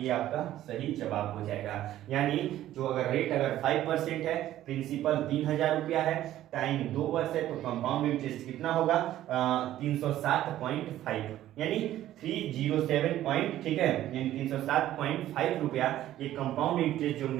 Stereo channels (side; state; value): left; quieter; 13.3 dB